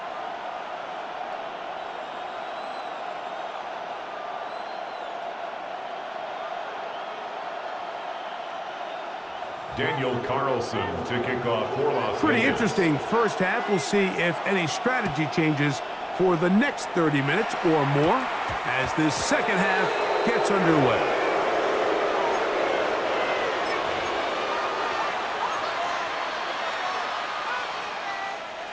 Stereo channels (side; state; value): both; identical; correlation 1.00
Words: Daniel Carlson to kick off for Las Pretty Vegas. interesting first half. We'll see if any strategy changes for the next 30 minutes or more as this second half gets underway.